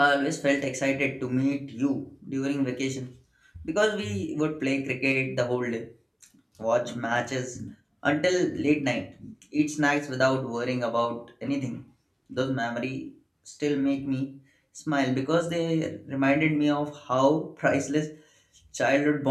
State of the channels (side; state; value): both; identical; correlation 1.00